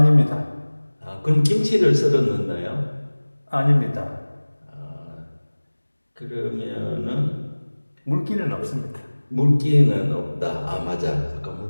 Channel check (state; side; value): inverted; both; correlation -1.00